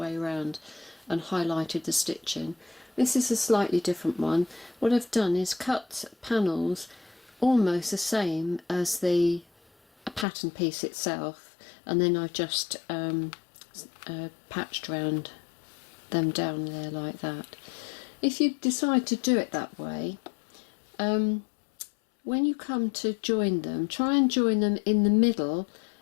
around and highlighted the stitching. This is a slightly different one. What I've done is cut panels almost the same as the pattern piece itself, and then I've just patched around them down there like that. If you decide to do it that way, when you come to join them, try and join them in the middle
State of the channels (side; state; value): right; drops out; at 10.2 s